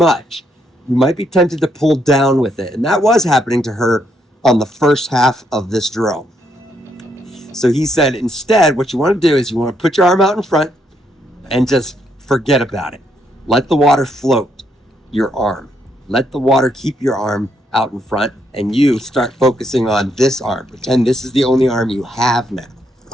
you might be tempted to pull down with it. And that was happening to her on the first half of this drill. So he said, instead, what you want to do is you want to put your arm out in front and just forget about it. Let the water float your arm. Let the water keep your arm out in front, and you start focusing on this arm. Pretend this is the only arm you have now.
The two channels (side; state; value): both; normal; correlation 0.75